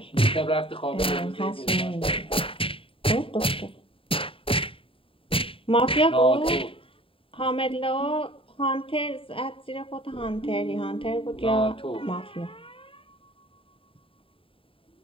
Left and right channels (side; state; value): right; late; 0.26 ms